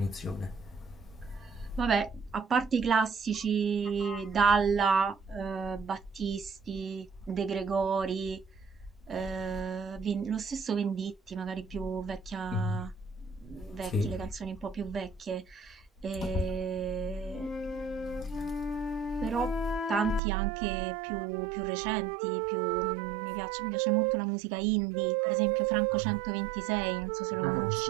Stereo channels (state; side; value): drops out; left; at 20.2 s